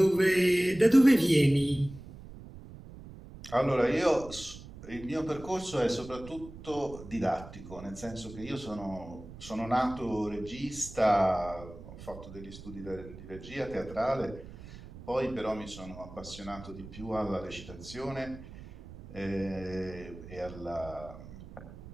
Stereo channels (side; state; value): right; noise; rumble, 15 dB below the sound